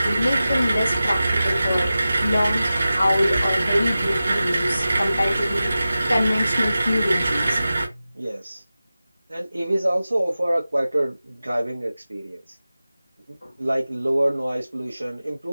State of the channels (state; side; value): inverted; both; correlation -0.95